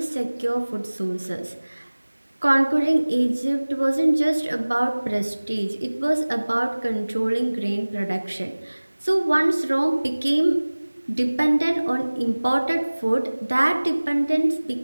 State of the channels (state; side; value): inverted; both; correlation -1.00